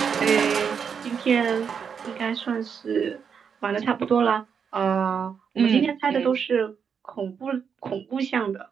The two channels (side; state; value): left; quieter; 6.8 dB